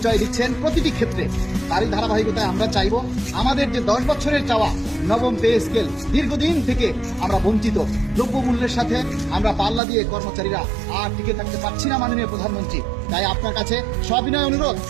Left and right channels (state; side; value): drops out; left; at 9.8 s